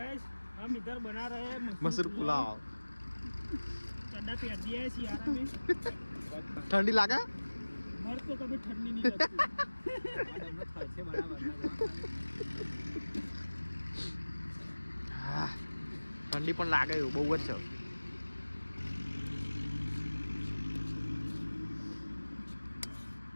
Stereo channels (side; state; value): both; inverted; correlation -1.00